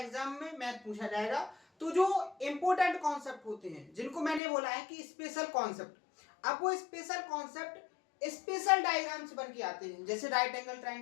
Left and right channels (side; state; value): right; drops out; at 4.4 s